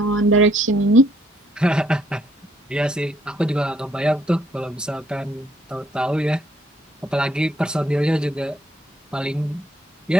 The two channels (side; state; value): both; normal; correlation 0.68